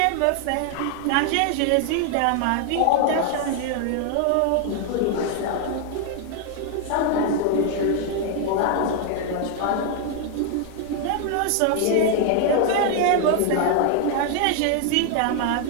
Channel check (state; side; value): different; both; correlation 0.00